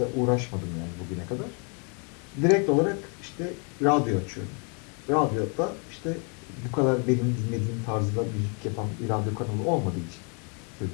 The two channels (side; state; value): right; quieter; 37.0 dB